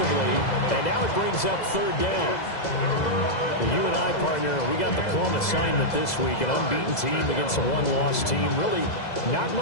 And now it brings up 3rd down. Well, you and I, partner, we got the plum assignment this week. An unbeaten team against a one-loss team. Really not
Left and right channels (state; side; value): late; right; 2.0 ms